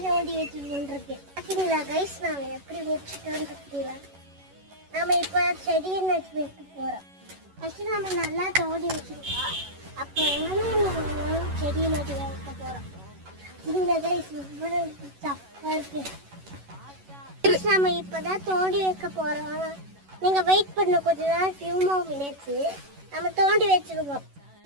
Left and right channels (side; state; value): left; late; 11 ms